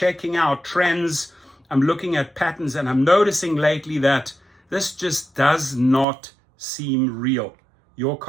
out trends. I'm looking at patterns, and I'm noticing lately that this just does not seem real. Your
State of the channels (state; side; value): drops out; left; at 6.1 s